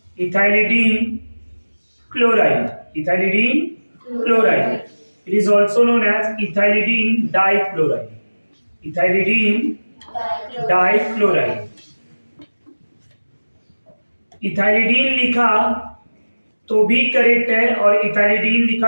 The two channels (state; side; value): inverted; both; correlation -1.00